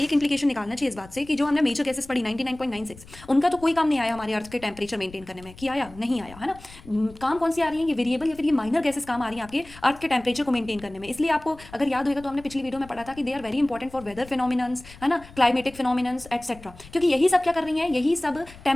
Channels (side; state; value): left; noise; rumble, 20 dB below the sound